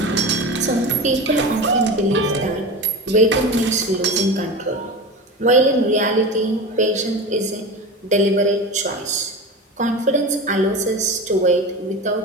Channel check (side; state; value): both; normal; correlation 0.27